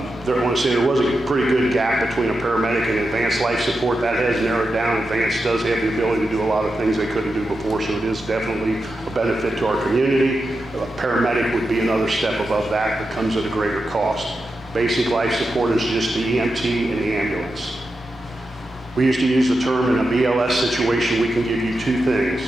want to say there was a pretty good gap between a paramedic and advanced life support. That has narrowed down. Advanced does have the ability to do a lot of things they couldn't do before, so it is definitely a benefit to our community. A paramedic would be another step above that that comes at a greater cost. Basic life support is just the EMT and the ambulance. We used to use the term in a BLS situation, we can give you 2 things.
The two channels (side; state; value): both; normal; correlation 0.89